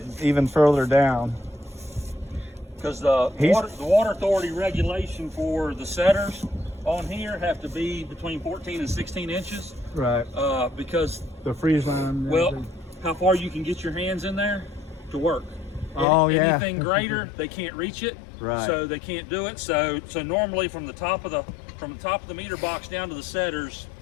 even further down. Because the He's- water authority regulation for the setters on here have to be between 14 and 16 inches. Right. Because The freeze line. and well, everything. how far you can get your hands in there to work. Oh, yeah. Anything greater, they can't reach it. Right. So they can't do it. So normally from the top of the meter box down to the setters,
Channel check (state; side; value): drops out; right; at 16.1 s